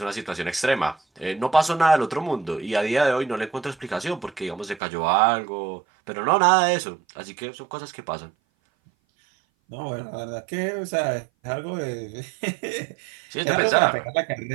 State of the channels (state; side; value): drops out; left; at 4.8 s